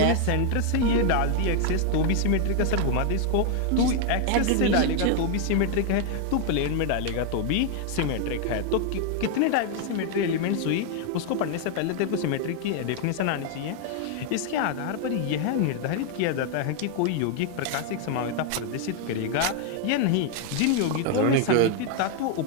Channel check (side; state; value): both; different; correlation 0.00